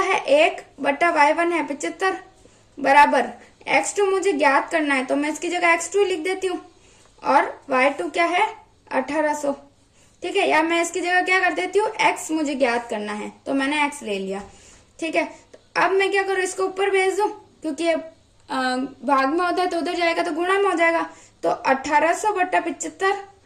1 बटा y1 है 75 बराबर x2 मुझे ज्ञात करना है, तो मैं इसकी जगह x2 लिख देती हूँ और y2 क्या है 1800, ठीक है। या मैं इसकी जगह क्या कर देती हूँ, x मुझे ज्ञात करना है तो मैंने x ले लिया, ठीक है। तो अब मैं क्या करूँ, इसको ऊपर भेज दूं क्योंकि ये भाग में होता है तो उधर जाएगा तो गुणा में हो जाएगा। तो 1800 बटा 75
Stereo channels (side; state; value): both; identical; correlation 1.00